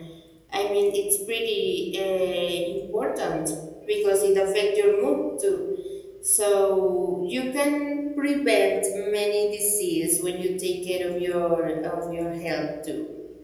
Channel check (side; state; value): both; identical; correlation 1.00